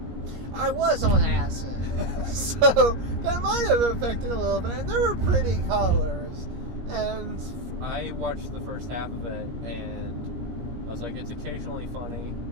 I was on acid, so that might have affected a little bit. And there were pretty colors, and I watched the first half of it, and I was like, it's occasionally funny,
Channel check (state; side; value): late; left; 17 ms